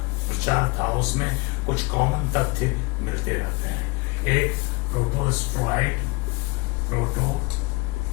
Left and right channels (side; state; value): right; quieter; 26.3 dB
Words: प्रचार था, उसमें कुछ कॉमन तथ्य मिलते रहते हैं। एक प्रोटोस्ट्रॉइड